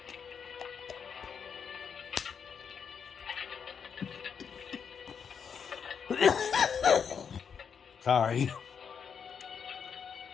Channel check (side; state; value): right; quieter; 6.9 dB